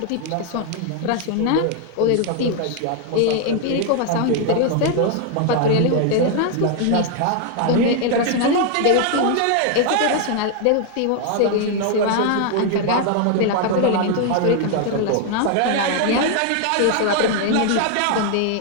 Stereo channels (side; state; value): both; different; correlation 0.00